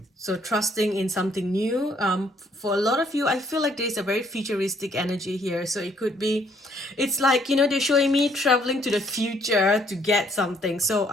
So trusting in something new. For a lot of you, I feel like there's a very futuristic energy here. So it could be, it's like, you know, they're showing me traveling to the future to get something. So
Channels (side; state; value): both; normal; correlation 0.66